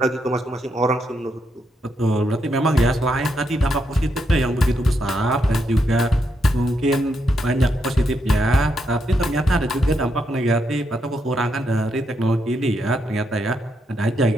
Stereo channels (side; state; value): both; normal; correlation 0.80